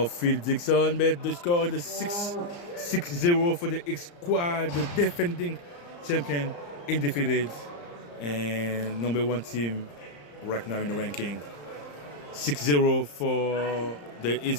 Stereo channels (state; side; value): late; right; 34 ms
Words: Phil Dixon, but the score is 6-0 for the Hitsquad, the defending champion, undefeated, and number 1 team right now in the ranking. 6-0 for the